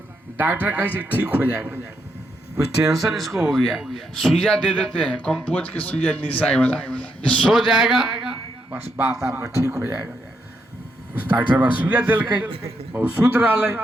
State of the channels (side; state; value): both; normal; correlation 0.79